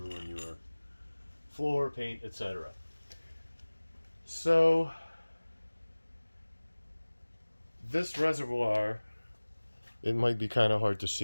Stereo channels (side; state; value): both; inverted; correlation -1.00